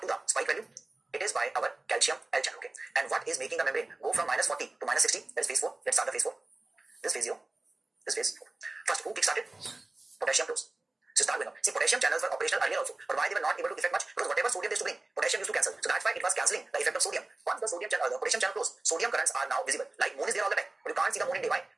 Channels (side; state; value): left; quieter; 3.0 dB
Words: the spike value? It is by our calcium L channel. Okay. And what is making the membrane go from minus 40 to minus 60? That is phase 4. Let's start the phase 4. This phase 0. This phase 4. First, who kick-started? Potassium close. So start with now. See, potassium channels were operational earlier also. But why they were not able to effect much? Because whatever sodium they used to bring, potassium used to cancel. So that's why it was cancelling the effect of sodium. Once the sodium channel, the potassium channel closed, sodium currents are now visible. Like moon is there all the time. But you can't see the moon in day. Why?